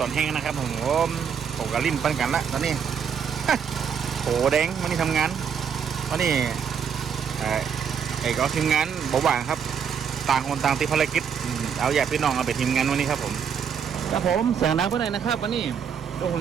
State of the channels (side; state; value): left; quieter; 7.3 dB